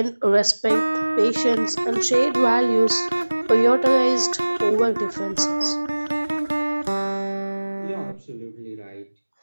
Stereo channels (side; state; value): both; inverted; correlation -1.00